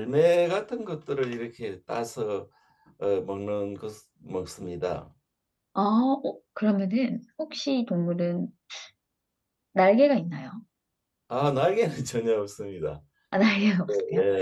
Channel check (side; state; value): both; identical; correlation 1.00